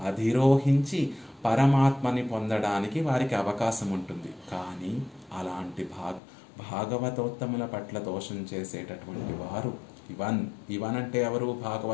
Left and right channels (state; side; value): drops out; right; at 6.2 s